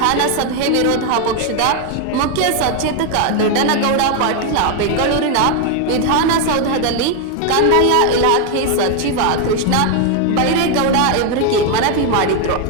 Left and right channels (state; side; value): different; both; correlation 0.01